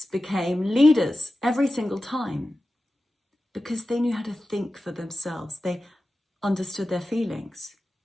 became leaders every single time because they knew how to think for themselves. They understood their feelings.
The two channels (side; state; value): both; normal; correlation 0.94